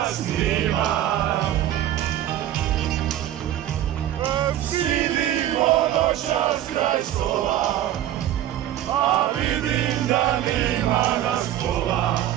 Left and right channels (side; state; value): left; quieter; 12.4 dB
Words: nima. Sidimo noćas kraj stola, a vidim da nima nas pola,